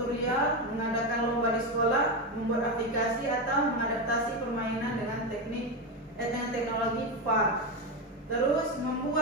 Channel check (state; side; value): normal; both; correlation 0.12